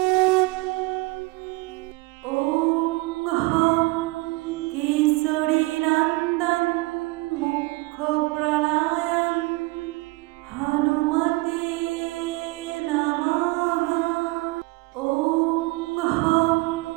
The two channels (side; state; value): left; quieter; 23.8 dB